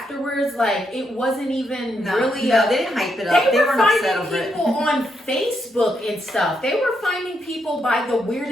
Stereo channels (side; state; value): both; normal; correlation 0.79